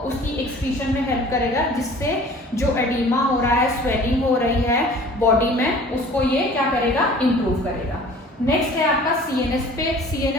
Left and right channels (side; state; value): both; normal; correlation 0.47